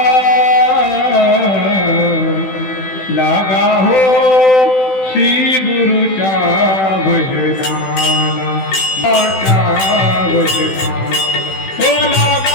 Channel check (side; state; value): right; late; 16 ms